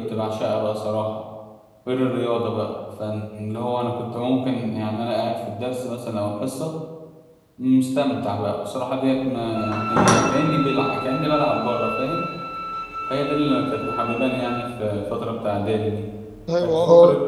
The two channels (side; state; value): both; identical; correlation 1.00